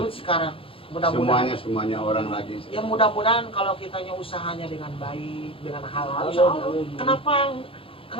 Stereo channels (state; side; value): late; right; 0.26 ms